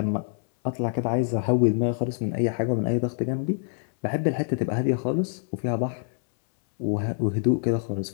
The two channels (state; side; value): silent; right; 59 dB below the other